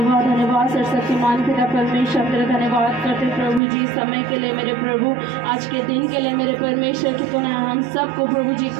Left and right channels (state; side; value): drops out; left; at 3.6 s